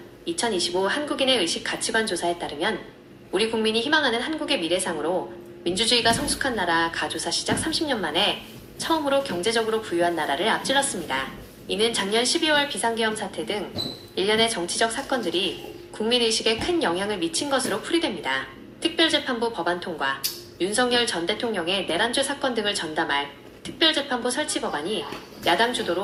2025 한국인의 의식 가치관 조사에 따르면 우리 국민이 희망하는 한국의 미래상으로 민주주의가 성숙한 나라 가조사 시작 30년 만에 처음으로 경제적으로 부유한 나라를 앞질렀습니다. 이는 작년 12월 비상계엄 사태 등 일련의 정치적 사건들이 국민의식에 큰 영향을 미친 것으로 풀이됩니다. 특별재판부 법안 통과, 윤석열 전 대통령의 내란죄 사건 등을 전담할 특별재판부 설치 법안이 야당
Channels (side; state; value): both; identical; correlation 1.00